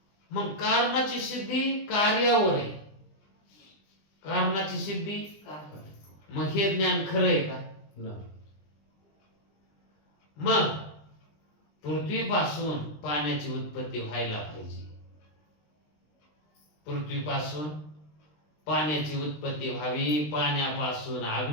मग कारणाची सिद्धी कार्यावर आहे. कारणाची सिद्धी, मग हे ज्ञान खरं आहे का? नाही. मग पृथ्वीपासून पाण्याची उत्पत्ती व्हायला पाहिजे. पृथ्वीपासून पाण्याची उत्पत्ती व्हावी, पाण्यापासून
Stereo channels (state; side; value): late; right; 20 ms